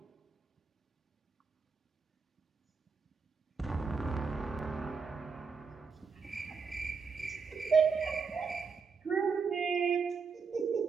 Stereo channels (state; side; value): quieter; left; 5.3 dB